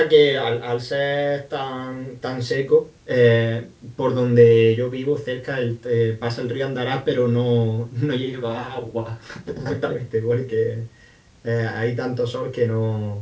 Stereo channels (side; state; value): both; identical; correlation 1.00